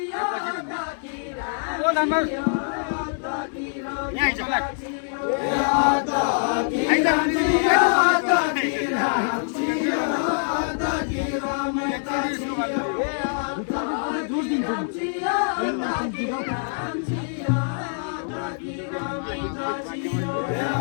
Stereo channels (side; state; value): right; silent; 62 dB below the other